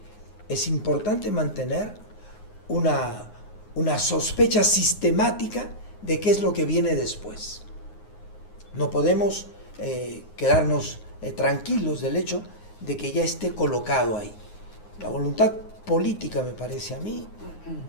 es importante mantener una sospecha sistemática de qué es lo que viene después. No podemos quedarnos tranquilos del hecho de que ya esté colocado ahí. La voluntad política, me parece a mí,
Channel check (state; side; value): late; right; 9.6 ms